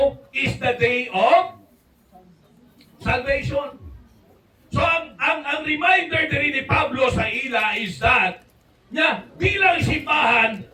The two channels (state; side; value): identical; both; correlation 1.00